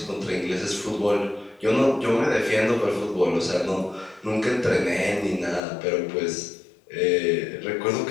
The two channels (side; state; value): right; drops out; at 5.7 s